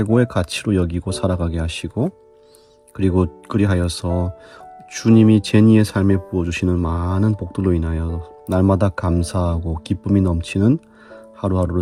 가치로 여기고 살아가게 하시고 그리고 그리하여서 주님이 제니의 삶에 부어주시는 많은 복들로 인하여 날마다 감사하고 기쁨이 넘치는 하루하루를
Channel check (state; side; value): identical; both; correlation 1.00